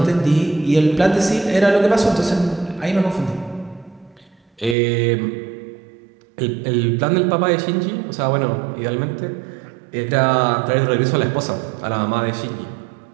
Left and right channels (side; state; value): left; drops out; at 4.8 s